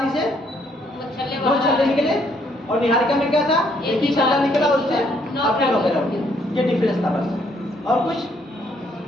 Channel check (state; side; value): normal; both; correlation 0.69